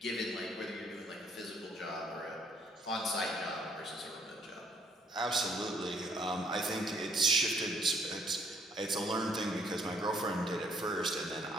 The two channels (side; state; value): both; normal; correlation 0.65